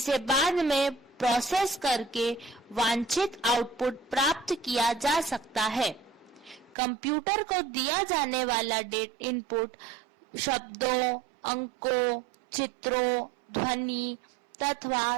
बाद में प्रोसेस करके वांछित आउटपुट प्राप्त किया जा सकता है। कंप्यूटर को दिया जाने वाला इनपुट शब्दों, अंकों, चित्रों, ध्वनि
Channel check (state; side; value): drops out; left; at 6.8 s